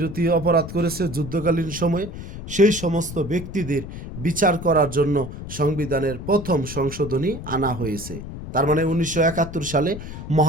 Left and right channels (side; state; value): left; noise; rumble, 10 dB below the sound